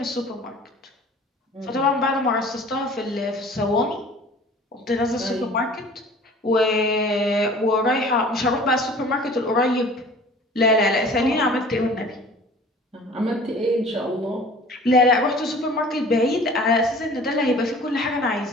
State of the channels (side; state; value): both; normal; correlation 0.46